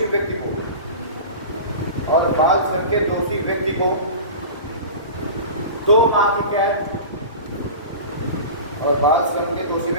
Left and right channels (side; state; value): both; inverted; correlation -0.33